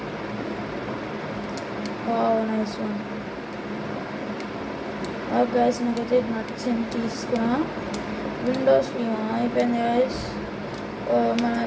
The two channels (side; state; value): both; identical; correlation 1.00